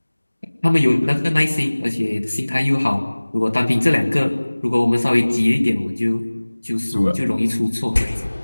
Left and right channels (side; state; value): both; inverted; correlation -1.00